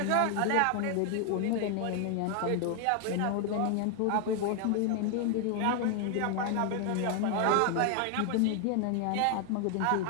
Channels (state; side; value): different; both; correlation 0.00